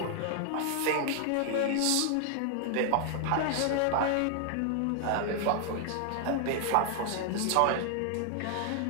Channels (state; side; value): different; both; correlation 0.00